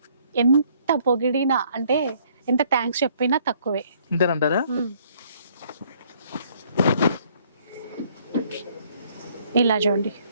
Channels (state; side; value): inverted; both; correlation -0.63